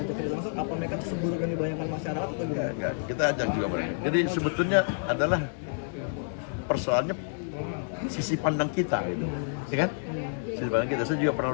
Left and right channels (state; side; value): silent; right; digital silence